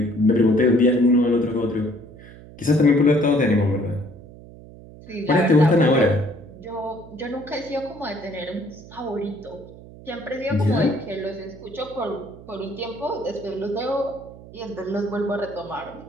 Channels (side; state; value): right; noise; hum, 18 dB below the sound